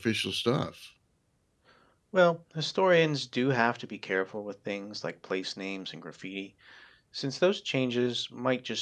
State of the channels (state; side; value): identical; both; correlation 1.00